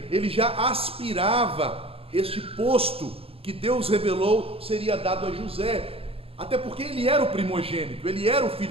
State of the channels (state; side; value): late; left; 0.28 ms